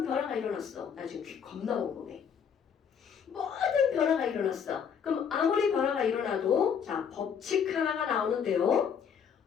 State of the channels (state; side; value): quieter; right; 7.3 dB